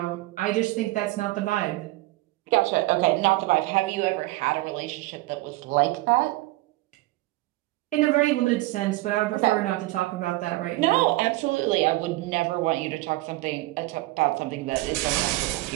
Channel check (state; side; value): quieter; left; 19.3 dB